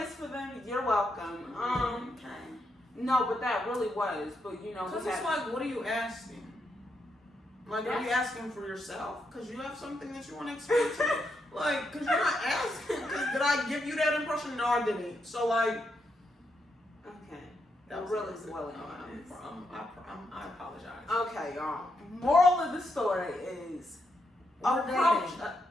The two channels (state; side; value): normal; both; correlation 0.81